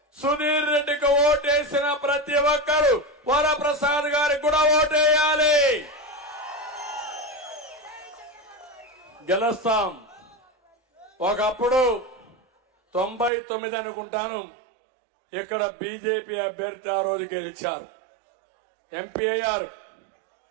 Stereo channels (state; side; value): drops out; left; at 13.3 s